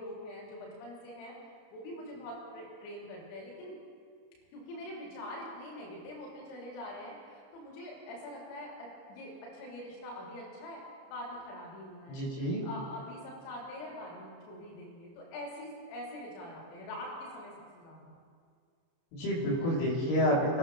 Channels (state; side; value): late; right; 30 ms